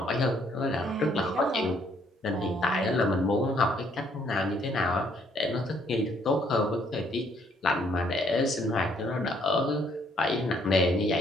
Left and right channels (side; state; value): both; normal; correlation 0.67